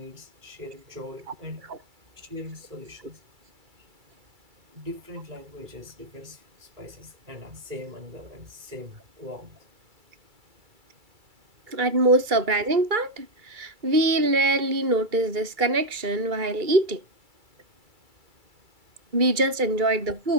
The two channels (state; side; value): late; left; 2.3 ms